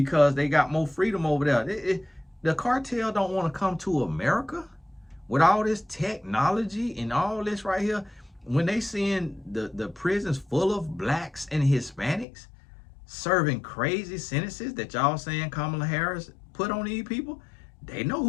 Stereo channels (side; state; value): right; drops out; at 12.2 s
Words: they got more freedom over there. The cartel don't want to come to America with all this technology and all this right here. When they seeing the prisons full of blacks and Hispanics serving crazy sentences that y'all saying Kamala Harris put on these people, they know